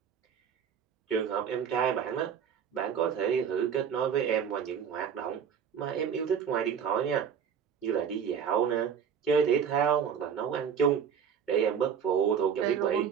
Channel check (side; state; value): left; quieter; 7.5 dB